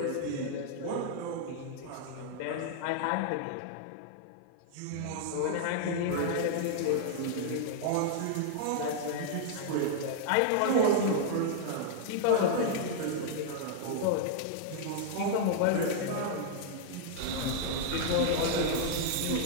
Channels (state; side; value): different; both; correlation 0.00